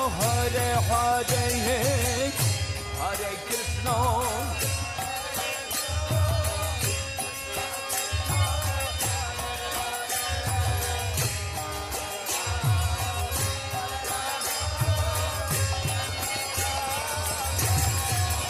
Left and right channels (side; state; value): both; identical; correlation 1.00